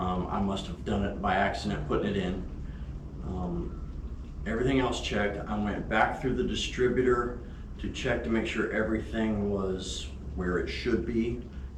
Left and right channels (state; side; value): identical; both; correlation 1.00